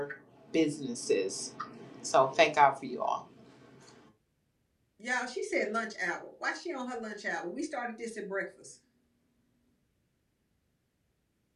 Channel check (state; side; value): identical; both; correlation 1.00